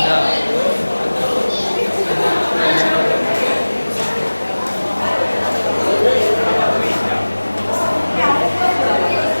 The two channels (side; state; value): both; inverted; correlation -1.00